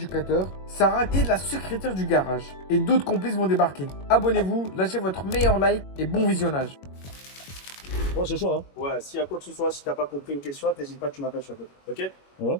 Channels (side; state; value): right; late; 21 ms